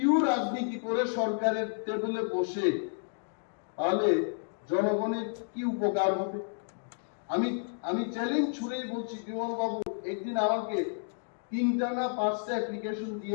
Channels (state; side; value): silent; right; digital silence